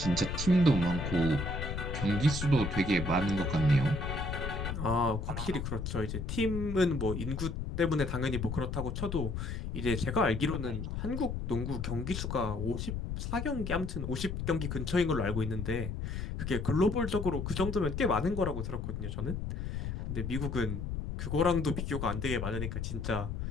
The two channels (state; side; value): noise; left; rumble, 4 dB below the sound